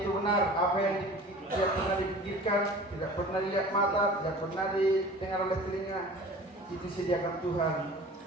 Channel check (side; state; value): both; normal; correlation 0.42